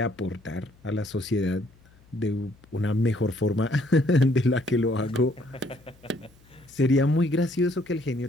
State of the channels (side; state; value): left; noise; hum, 28 dB below the sound